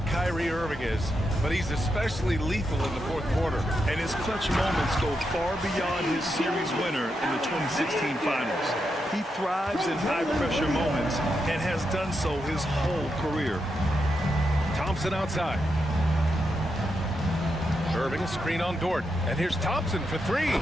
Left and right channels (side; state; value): both; normal; correlation 0.84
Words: Kyrie Irving is, but he's especially lethal in the 4th quarter. And his clutch moments go far beyond his series winner in the 2016 finals. He thrives in high-pressure moments and has done so his whole career. Thompson outside. Irving, a screen on Dort. And here's Thompson for 3.